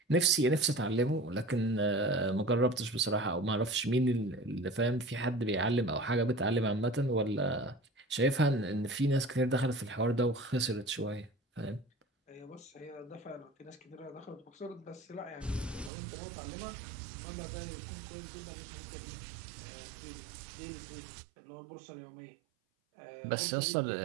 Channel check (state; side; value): drops out; left; at 15.9 s